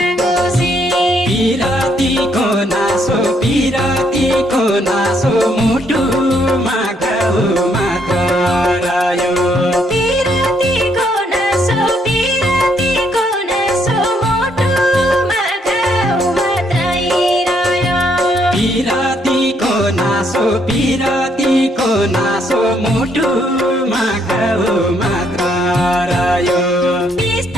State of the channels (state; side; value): normal; both; correlation 0.71